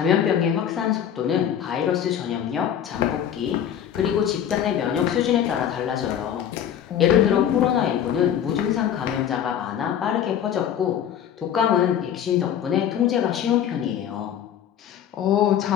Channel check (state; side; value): quieter; right; 9.6 dB